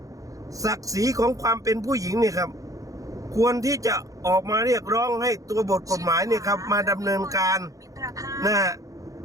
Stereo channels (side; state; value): left; late; 0.16 ms